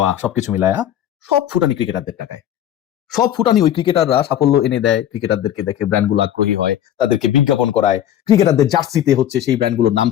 সবকিছু মিলায়া সব ফুটানি ক্রিকেটারদের টাকায়। সব ফুটানি ওই ক্রিকেটাররা সাফল্য এনে দেয়, ক্রিকেটারদেরকে দেখে ব্র্যান্ডগুলো আগ্রহী হয়, তাদেরকে বিজ্ঞাপন করায়, ক্রিকেটারদের জার্সিতে হচ্ছে সেই ব্র্যান্ডগুলোর নাম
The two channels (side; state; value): right; quieter; 11.2 dB